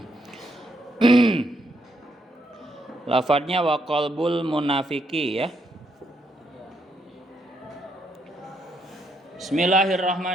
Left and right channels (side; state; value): both; normal; correlation 0.76